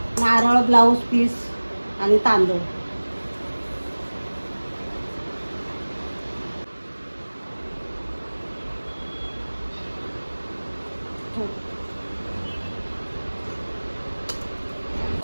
नारळ, ब्लाऊज पीस आणि तांदूळ.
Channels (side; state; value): both; inverted; correlation -1.00